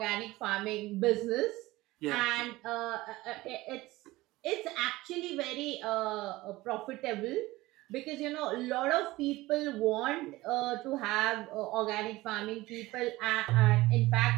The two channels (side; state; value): left; quieter; 19.0 dB